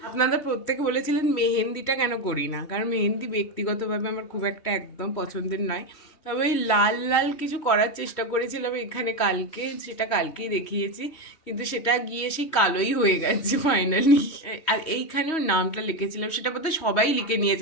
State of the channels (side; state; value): right; late; 3.1 ms